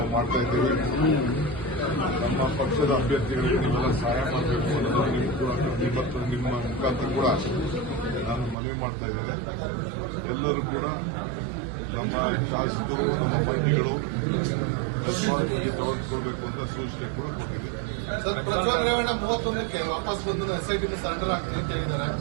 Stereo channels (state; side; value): drops out; left; at 8.6 s